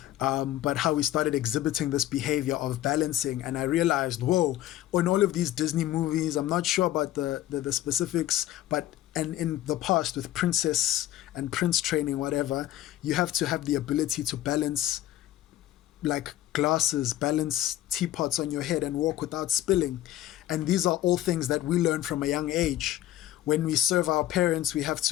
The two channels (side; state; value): right; quieter; 13.6 dB